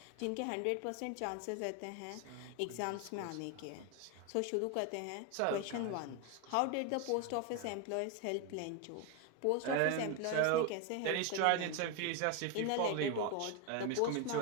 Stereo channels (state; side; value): different; both; correlation 0.01